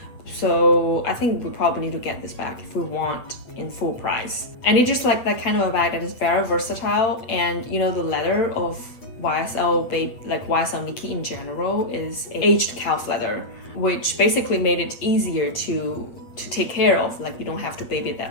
So I think we probably need to get this bag if we want in full price. And it's just like that kind of a bag that is very versatile, and you know, the leather of YSL YSL Niki in general is aged calf leather, which basically made it easier to take care of. Like, you don't have to baby it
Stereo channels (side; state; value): right; late; 8.3 ms